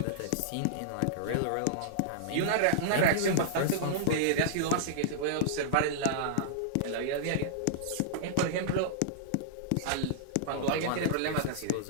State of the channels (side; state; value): both; different; correlation -0.02